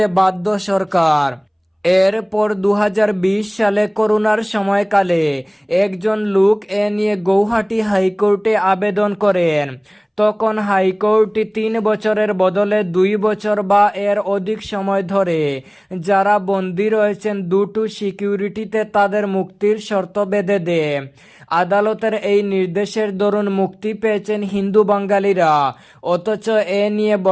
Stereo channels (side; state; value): both; identical; correlation 1.00